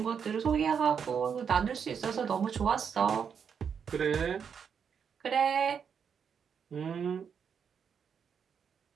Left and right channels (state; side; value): quieter; left; 7.0 dB